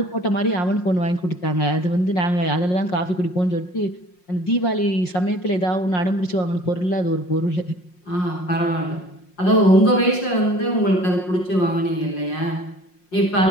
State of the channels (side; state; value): right; late; 5.6 ms